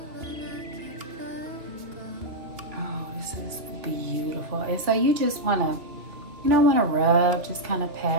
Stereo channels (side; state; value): left; late; 2.9 ms